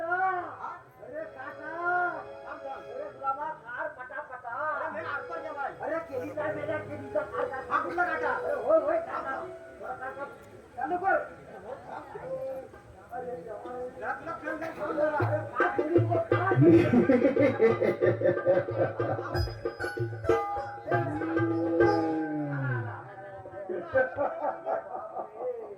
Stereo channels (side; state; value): both; identical; correlation 1.00